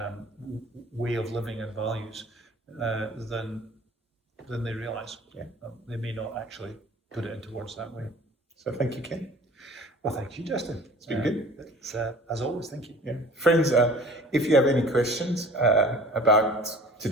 way of living and values than they realise. Yeah. They may not actually put it into words that way. So thank you, Ken. Well, thank you, Justin. It's been good. It's, as always, thank you. Yeah. Friends, if you have any questions about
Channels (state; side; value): normal; both; correlation 0.47